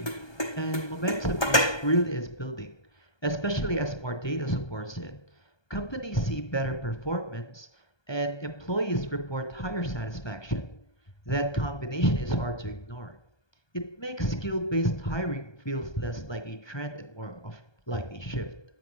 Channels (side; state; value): right; late; 1.2 ms